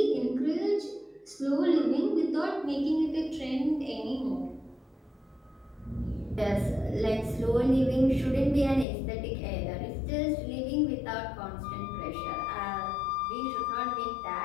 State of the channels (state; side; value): drops out; right; at 8.8 s